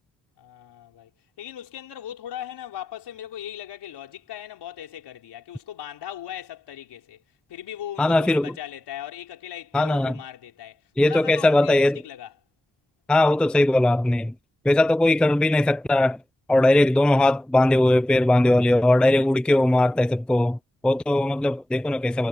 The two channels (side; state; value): both; normal; correlation 0.96